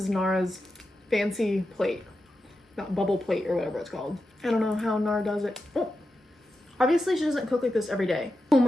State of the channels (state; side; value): normal; both; correlation 0.90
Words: Nara's fancy plate. Not bubble plate or whatever it's called. I don't know how Nara does it. Oh. Obviously she doesn't cook like this every day. Oh